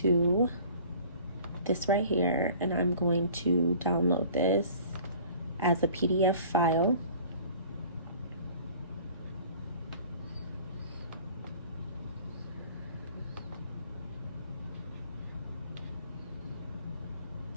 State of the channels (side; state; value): both; inverted; correlation -0.49